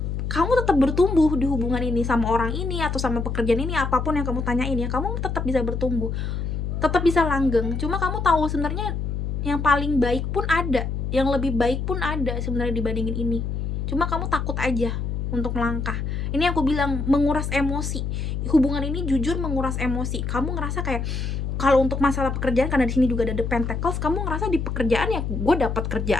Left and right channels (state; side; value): noise; left; hum, 2 dB below the sound